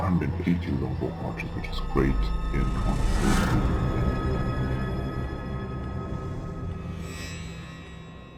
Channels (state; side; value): identical; both; correlation 1.00